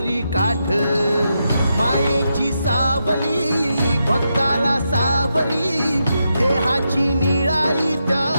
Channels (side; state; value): both; inverted; correlation -0.85